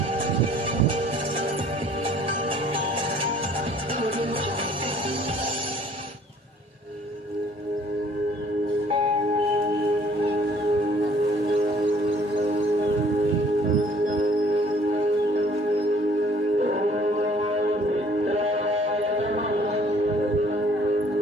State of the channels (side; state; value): both; normal; correlation 0.57